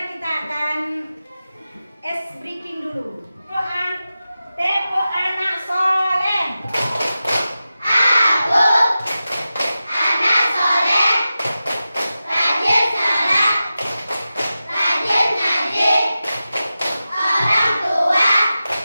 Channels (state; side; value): inverted; both; correlation -0.93